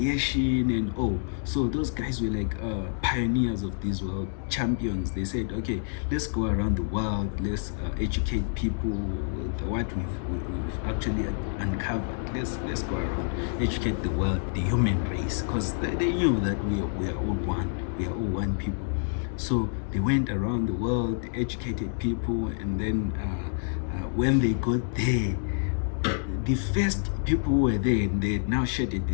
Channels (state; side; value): silent; right; digital silence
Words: and so those guys were like pioneers of this world, champions. They said, okay, let's go around the world, let's educate people with what we've actually uncovered. Let's go around, educate the world, the human race, because they knew that we are all one. We are all one people. So they went around the world, educated people, and then when they got there, the first people who were there, and they had now shedded the